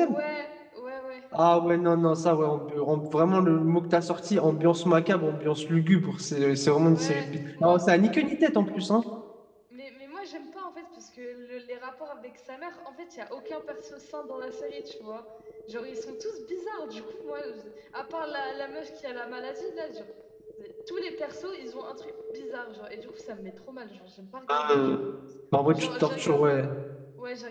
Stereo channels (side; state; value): both; identical; correlation 1.00